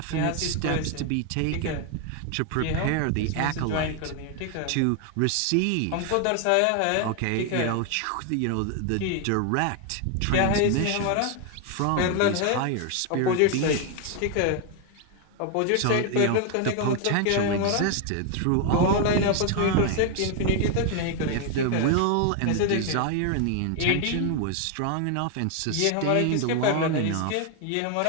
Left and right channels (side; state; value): both; different; correlation 0.01